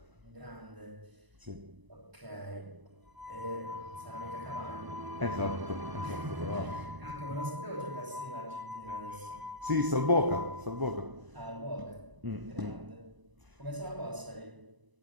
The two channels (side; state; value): left; late; 1.0 ms